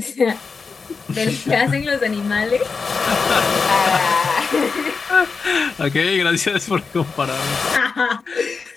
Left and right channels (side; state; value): right; quieter; 4.9 dB